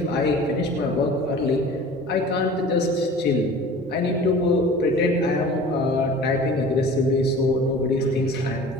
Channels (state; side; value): normal; both; correlation 0.42